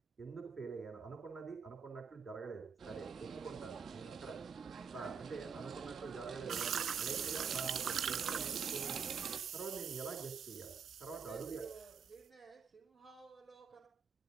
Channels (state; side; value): quieter; left; 6.5 dB